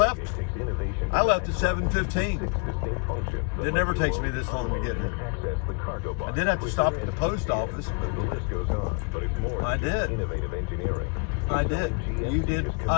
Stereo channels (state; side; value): quieter; right; 33.6 dB